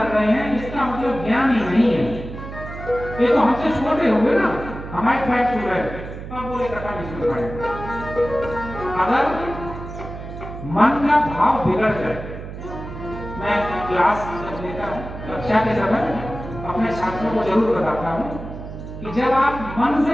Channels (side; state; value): right; noise; hum, 10 dB below the sound